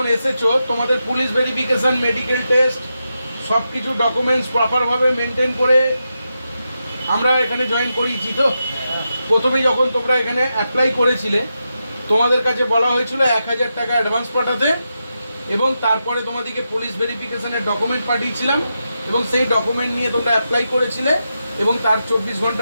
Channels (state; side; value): inverted; both; correlation -0.87